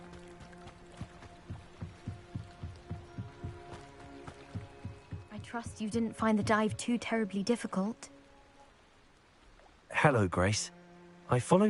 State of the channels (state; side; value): identical; both; correlation 1.00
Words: I trust you didn't find the dive too terribly difficult. Hello, Grace. I